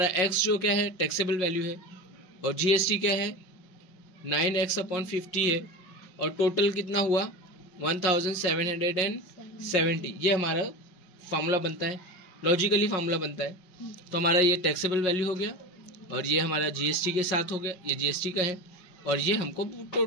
x जो क्या है टैक्सेबल वैल्यू है, और GST क्या है 9x/50 है, और टोटल कितना हुआ 1770। ये हमारा फार्मूला बनता है, लॉजिकली फार्मूला बनता है। तो हमारा ये टैक्सेबल वैल्यू हो गया, और ये हमारा GST के साथ हो गया, ये GST का है, और ये हमको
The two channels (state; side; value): late; right; 5.5 ms